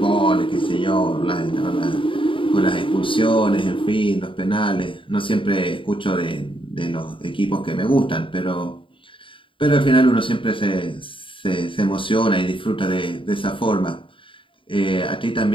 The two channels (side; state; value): right; late; 0.25 ms